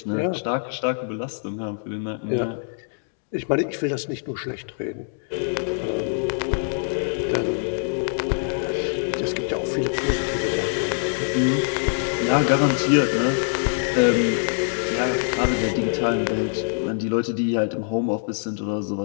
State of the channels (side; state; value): right; silent; digital silence